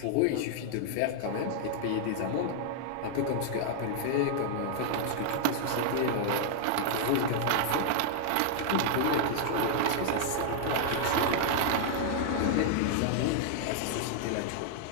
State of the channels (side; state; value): both; different; correlation -0.01